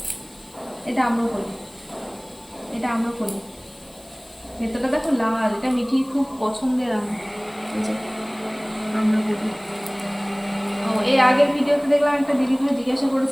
এটা আম্রপলি, এটা আম্রপলি, ভেতরটা দেখো লাল, এটা মিঠি খুব পছন্দের আম। আম্রপলি। ও এর আগের ভিডিওতে দেখলাম একটা দিদি ভাই জিজ্ঞাসা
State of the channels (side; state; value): left; noise; hiss, 25 dB below the sound